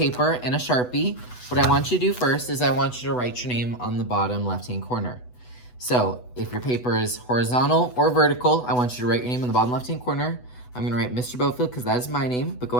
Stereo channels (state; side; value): late; right; 8.1 ms